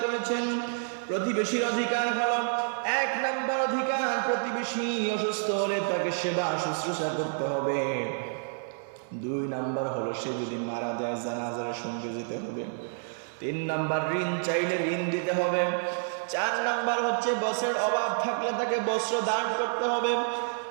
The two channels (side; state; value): left; silent; digital silence